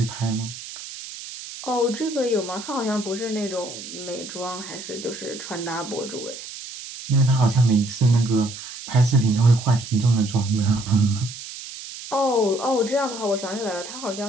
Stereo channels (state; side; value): noise; right; hiss, 12 dB below the sound